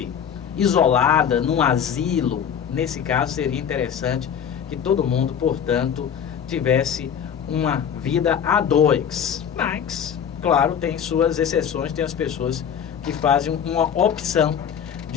isolada num asilo. Nesse caso seria interessante que todo mundo, portanto, tivesse uma vida a dois. Mas, claro, tem suas exceções, tem as pessoas que fazem uma opção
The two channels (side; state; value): right; quieter; 8.2 dB